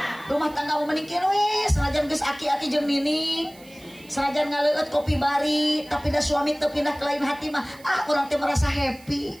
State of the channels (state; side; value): noise; right; hiss, 25 dB below the sound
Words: rumah tangga mau menikir we, senajan geus aki-aki jeung nini, senajan ngaleueut kopi bari, tapi da suami teu pindah ke lain hati mah, urang teh merasa happy.